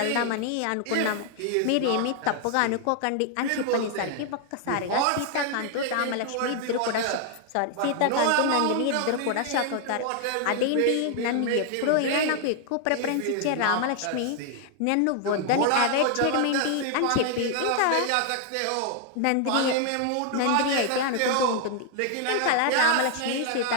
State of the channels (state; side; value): different; both; correlation 0.00